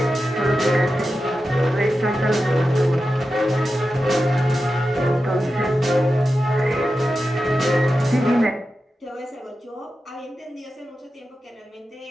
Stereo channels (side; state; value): both; normal; correlation 0.91